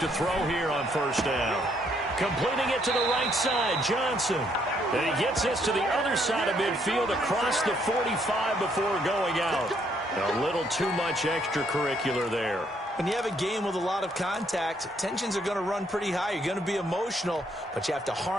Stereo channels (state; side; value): normal; both; correlation 0.70